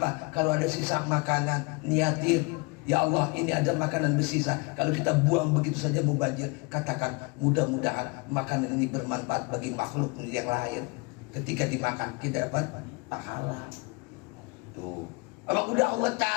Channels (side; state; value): right; quieter; 28.1 dB